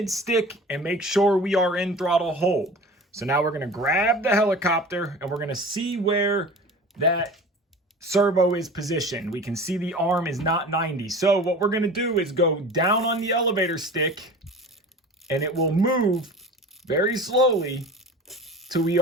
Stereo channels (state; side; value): normal; both; correlation 0.38